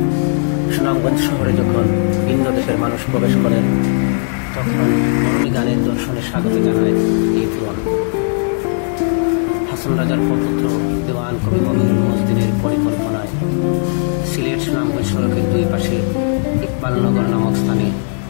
সুনামগঞ্জ শহরে যখন ভিন্ন দেশের মানুষ প্রবেশ করেন, তখন মরমী গানের দর্শনে স্বাগত জানায় এই তোরণ। হাসন রাজার প্রপুত্র দেওয়ান কবি মমিনুল মজদিনের পরিকল্পনায় সিলেট সুনামগঞ্জ সড়কের দুই পাশে ইকবালনগর নামক স্থানে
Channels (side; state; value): right; silent; 63 dB below the other